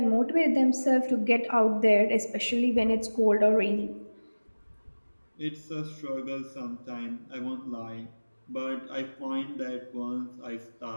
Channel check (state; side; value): inverted; both; correlation -1.00